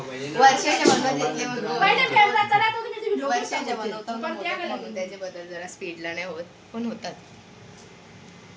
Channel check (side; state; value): both; identical; correlation 1.00